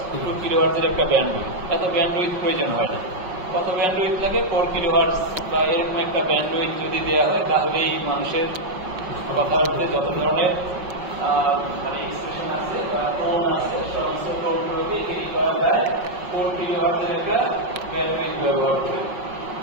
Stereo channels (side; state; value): left; late; 5.5 ms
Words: কিলোহার্টজের একটা ব্যান্ডউইথ, এত ব্যান্ডউইথ প্রয়োজন হয় না। কত ব্যান্ডউইথ লাগে, 4 কিলোহার্টজ বা এরকম একটা ব্যান্ডউইথ যদি দেওয়া হয়, তাহলেই মানুষের কথার মধ্যে যত ধরনের মানে এক্সপ্রেশন আছে বা টোন আছে, সমস্ত টোনগুলোকে এগিয়ে করা যায় 4 কিলোহার্টজের একটা ব্যান্ডউইথ ব্যবহার করে।